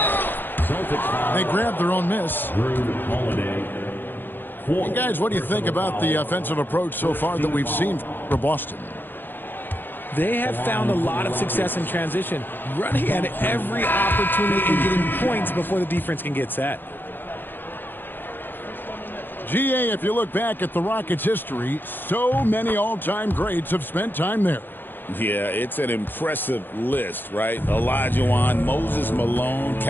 They grabbed their own miss. And guys, what do you think about the offensive approach so far that we've seen for Boston? They have found a lot of success in transition, running at every opportunity and getting points before the defense can get set. GA, if you look back at the Rockets' history, so many all-time greats have spent time there. Yeah, it's an impressive list, right? Olajuwon, Moses Malone,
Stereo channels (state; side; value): late; right; 0.095 ms